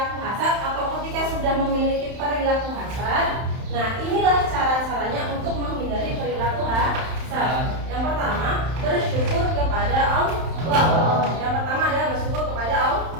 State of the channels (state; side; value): late; left; 31 ms